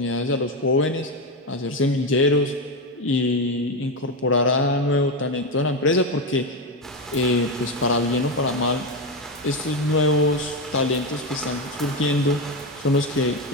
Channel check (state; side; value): normal; both; correlation 0.12